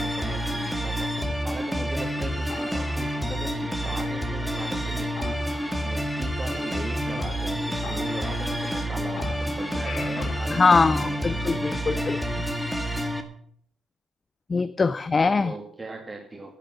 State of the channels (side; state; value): both; normal; correlation 0.90